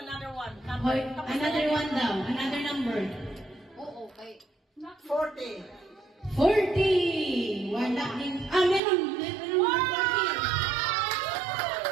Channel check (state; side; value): drops out; left; at 8.8 s